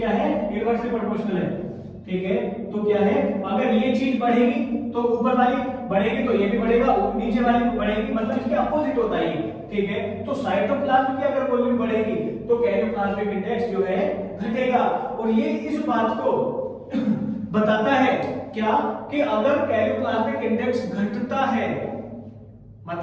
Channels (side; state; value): both; identical; correlation 1.00